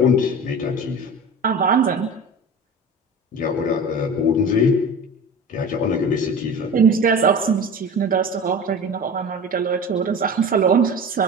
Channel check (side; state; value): both; normal; correlation 0.34